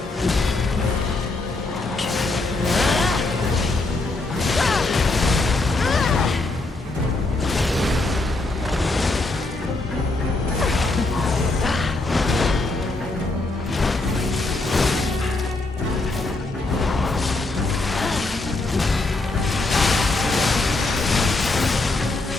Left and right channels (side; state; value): right; quieter; 3.1 dB